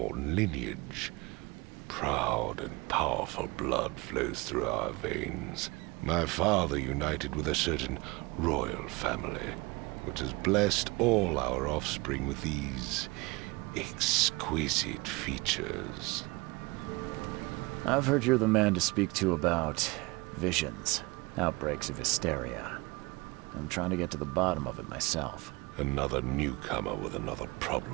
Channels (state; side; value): quieter; left; 24.6 dB